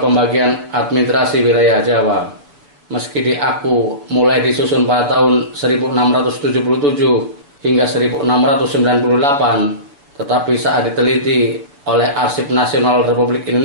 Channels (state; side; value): late; left; 7.0 ms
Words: administrasi wilayah Jawa. Meski diaku mulai disusun pada tahun 1677 hingga 1698, tetapi saat diteliti oleh Arsip Nasional Republik